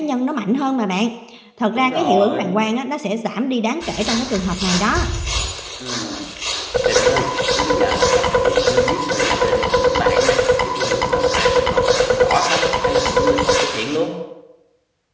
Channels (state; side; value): identical; both; correlation 1.00